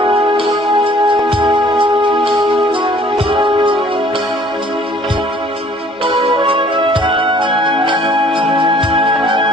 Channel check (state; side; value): normal; both; correlation 0.56